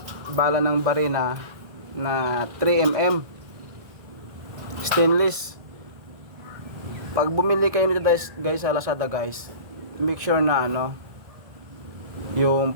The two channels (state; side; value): late; left; 1.9 ms